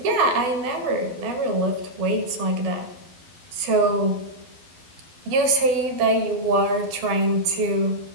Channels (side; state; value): left; late; 12 ms